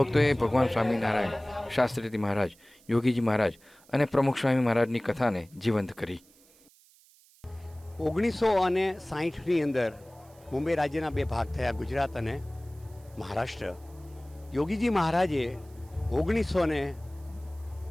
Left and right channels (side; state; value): right; noise; hiss, 28 dB below the sound